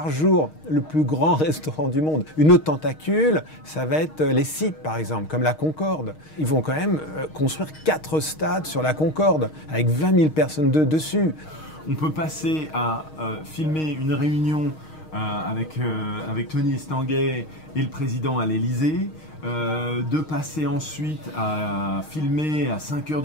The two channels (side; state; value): right; late; 6.4 ms